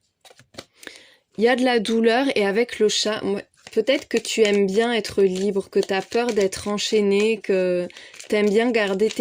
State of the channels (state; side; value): identical; both; correlation 1.00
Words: Il y a de la douleur et avec le chat, peut-être que tu aimes bien être libre, que tu as peur d'être enchaîné, que tu aimes bien garder